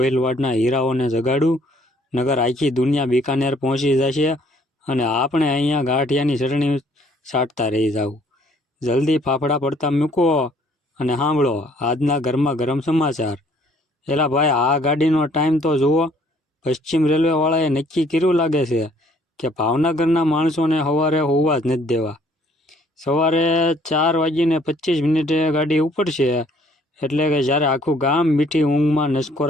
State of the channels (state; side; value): normal; both; correlation 0.61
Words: હીરાઓને જગાડું, નગર આખી દુનિયા બિકાનેર પહોંચી જશે અને આપણે અહીંયા ગાંઠિયાની ચટણી સાટતા રહી જાવ. જલ્દી ફાફડા પડતા મૂકો અને સાંભળો આજના ગરમા ગરમ સમાચાર. એલા ભાઈ, આ ગાડીનો ટાઈમ તો જુઓ. પશ્ચિમ રેલવેવાળાએ નક્કી કર્યું લાગે છે કે ભાવનગરના માણસોને સવારે હોવા જ નથી દેવા. સવારે 4:25 ગાડી ઉપડશે, એટલે કે જ્યારે આખું ગામ મીઠી ઊંઘમાં